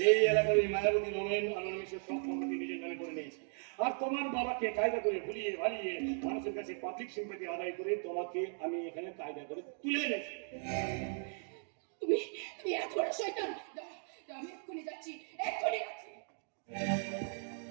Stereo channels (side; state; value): left; silent; 53 dB below the other